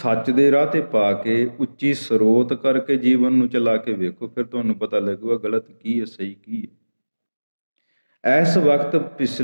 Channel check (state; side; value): inverted; both; correlation -1.00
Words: ਦੇ ਰਾਹ 'ਤੇ ਪਾ ਕੇ ਉੱਚੀ ਸਰੋਤ ਕਰਕੇ ਜੀਵਨ ਨੂੰ ਚਲਾ ਕੇ ਵੇਖੋ, ਫਿਰ ਤੁਹਾਨੂੰ ਪਤਾ ਲੱਗੂਗਾ ਗਲਤ ਕੀ ਹੈ, ਸਹੀ ਕੀ ਹੈ। ਇਸ ਵਕਤ